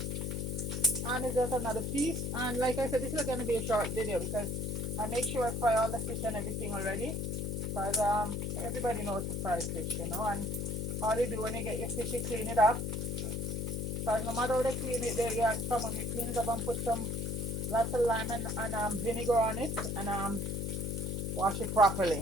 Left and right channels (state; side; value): noise; left; hum, 2 dB below the sound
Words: And it's just another piece. And like I said, this is going to be a short video because I make sure I fry all the fish and everything already. Because everybody knows to fry fish, you know. And all you do when you get your fish, you clean it up. Because no matter how they clean it, someone you clean it up and put some lots of lime and vinegar on it, and wash it